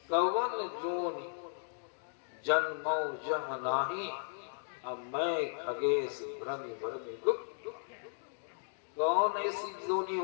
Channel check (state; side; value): silent; right; digital silence